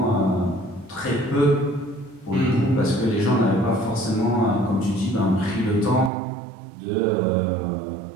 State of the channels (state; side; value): drops out; left; at 6.1 s